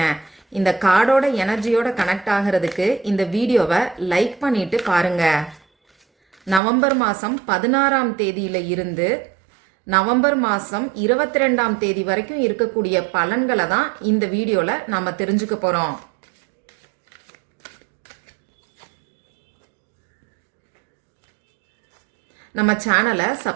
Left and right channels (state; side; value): drops out; left; at 6.6 s